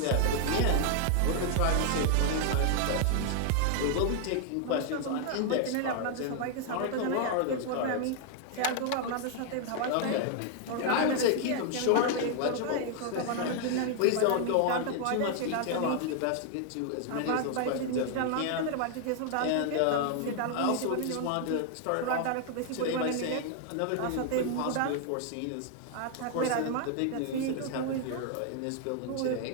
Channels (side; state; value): both; different; correlation 0.00